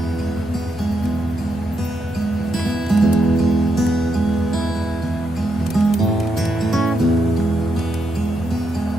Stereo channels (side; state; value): both; normal; correlation 0.81